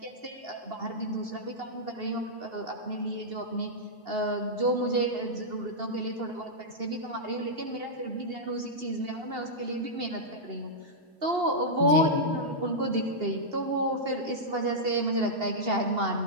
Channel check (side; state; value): left; late; 2.8 ms